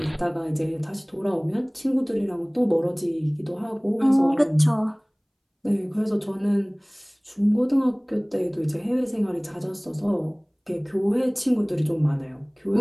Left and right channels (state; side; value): identical; both; correlation 1.00